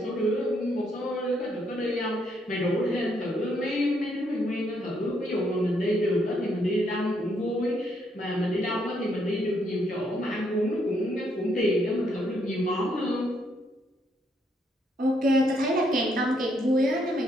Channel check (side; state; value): both; normal; correlation 0.73